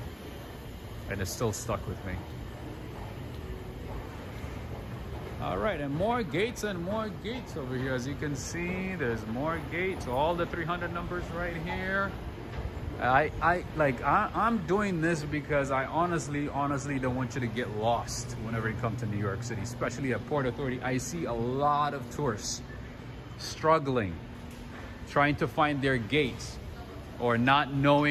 And it's still stuck with me. All right, and more gates over here. As you can see, there's more gates. All the 300 numbers right here. I'm doing this because I honestly don't want you to get lost whenever you come to New York City, especially at Port Authority. I see a lot of tourists struggling, trying to find their gates, or not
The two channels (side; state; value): both; identical; correlation 1.00